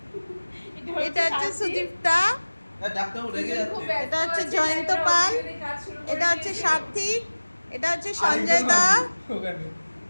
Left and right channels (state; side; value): inverted; both; correlation -1.00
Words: এটা হচ্ছে সুদীপ্তা, ডাক্তার রেগে যাচ্ছে। এটা হচ্ছে জয়ন্ত পাল, এটা হচ্ছে সার্থিক, এটা হচ্ছে সঞ্জয় দা।